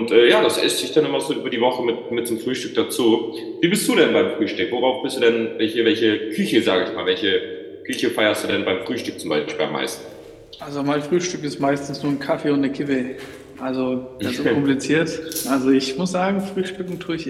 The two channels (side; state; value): both; identical; correlation 1.00